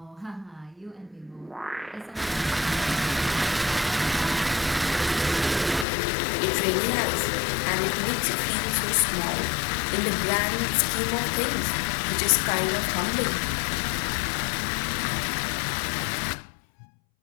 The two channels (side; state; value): right; drops out; at 5.9 s